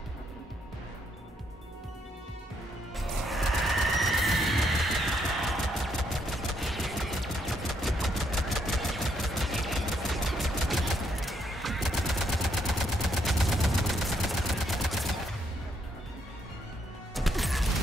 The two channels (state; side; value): normal; both; correlation 0.74